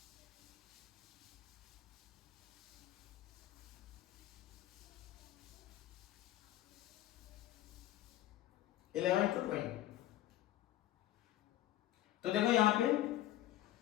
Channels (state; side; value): quieter; right; 14.0 dB